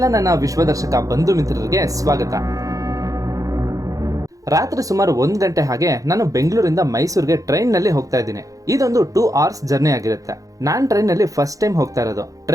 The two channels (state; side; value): late; left; 0.17 ms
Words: ನನ್ನ ವಿಶ್ವದರ್ಶಕ ಬಂಧು ಮಿತ್ರರಿಗೆ ಸ್ವಾಗತ. ರಾತ್ರಿ ಸುಮಾರು 1 ಗಂಟೆ ಹಾಗೆ ನಾನು ಬೆಂಗಳೂರಿಂದ ಮೈಸೂರಿಗೆ ಟ್ರೈನ್ ನಲ್ಲಿ ಹೋಗ್ತಾ ಇದ್ದೀನಿ. ಇದೊಂದು 2 hours ಜರ್ನಿ ಆಗಿರುತ್ತೆ. ನಾನ್ ಟ್ರೈನ್ ನಲ್ಲಿ ಫಸ್ಟ್ ಟೈಮ್ ಹೋಗ್ತಾ ಇರೋದು.